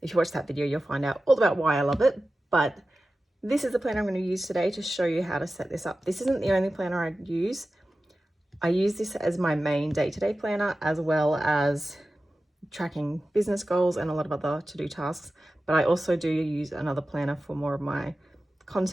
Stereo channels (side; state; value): both; normal; correlation 0.94